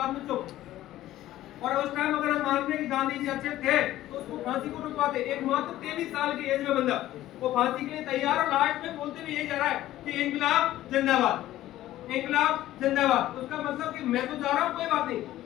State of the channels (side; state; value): right; quieter; 14.4 dB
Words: में चुप। और उस टाइम अगर हम मानते हैं कि गांधी जी अच्छे थे तो उसको फांसी को रुकवाते। एक मात्र 23 साल की एज में बंदा वो फांसी के लिए तैयार, और लास्ट में बोलते हुए यही जा रहा है कि इंकलाब जिंदाबाद, इंकलाब जिंदाबाद। उसका मतलब कि मैं तो जा रहा हूँ, कोई बात नहीं।